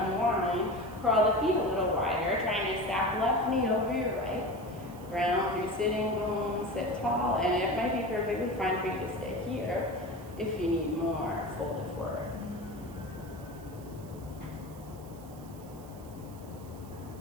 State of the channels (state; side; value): noise; right; hiss, 23 dB below the sound